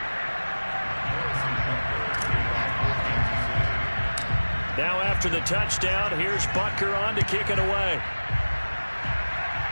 Now after the touchdown, here's Butker on to kick it away.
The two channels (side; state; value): both; inverted; correlation -1.00